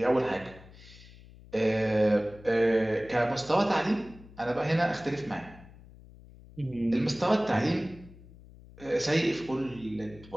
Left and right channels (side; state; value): left; noise; hum, 21 dB below the sound